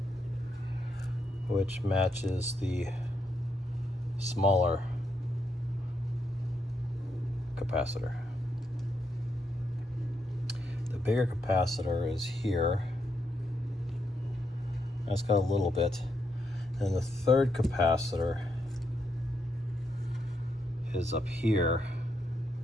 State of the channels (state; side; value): normal; both; correlation 0.80